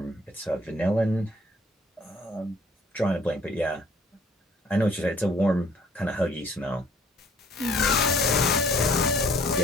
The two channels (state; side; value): normal; both; correlation 0.58